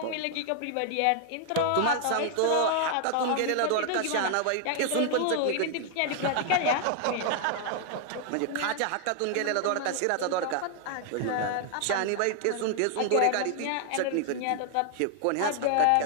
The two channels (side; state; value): both; different; correlation 0.00